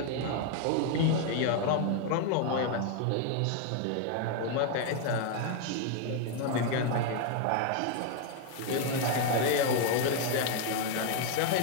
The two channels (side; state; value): both; different; correlation 0.00